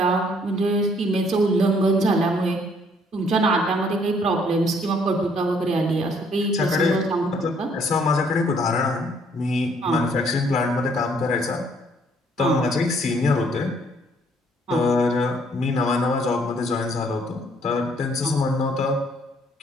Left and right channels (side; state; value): both; normal; correlation 0.64